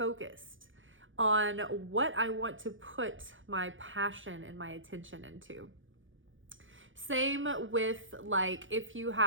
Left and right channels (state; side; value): late; left; 0.57 ms